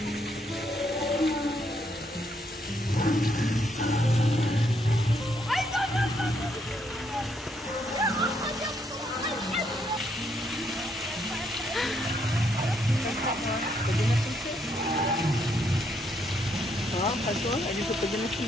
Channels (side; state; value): both; normal; correlation 0.74